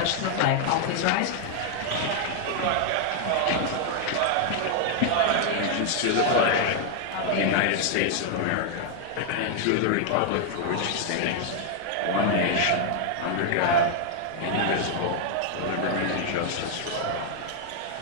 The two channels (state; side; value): different; both; correlation 0.00